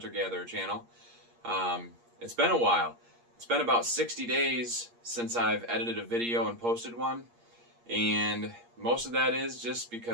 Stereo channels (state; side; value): late; left; 8.5 ms